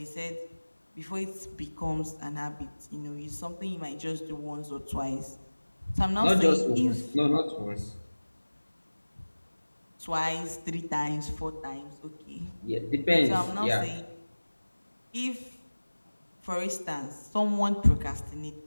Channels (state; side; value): inverted; both; correlation -1.00